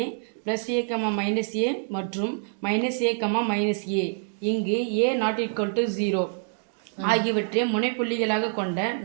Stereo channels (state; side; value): silent; left; 61 dB below the other